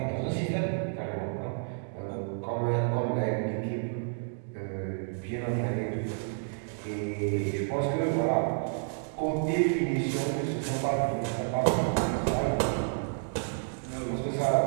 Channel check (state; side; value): silent; left; digital silence